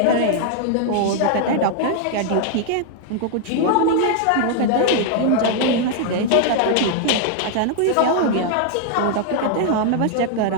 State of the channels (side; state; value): both; different; correlation 0.00